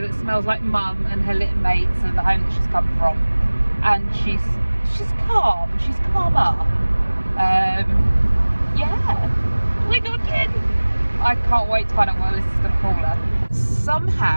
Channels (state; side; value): inverted; both; correlation -1.00